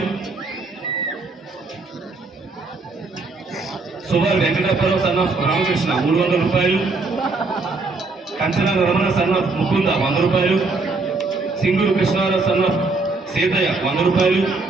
సుభార్ వెంకటప్పరావు సన్న రామకృష్ణ 300 రూపాయలు, కంచన రమణ సన్న ముకుంద 100 రూపాయలు, సింగూరు కృష్ణారావు సన్న సీతయ్య 100 రూపాయలు,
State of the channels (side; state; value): left; quieter; 3.7 dB